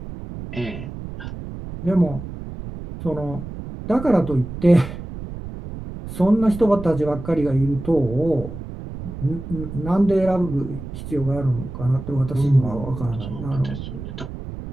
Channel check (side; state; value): right; noise; rumble, 10 dB below the sound